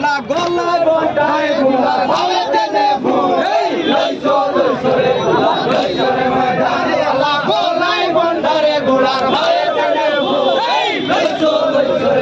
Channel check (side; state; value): both; identical; correlation 1.00